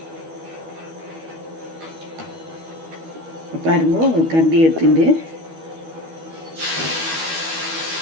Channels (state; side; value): late; left; 12 ms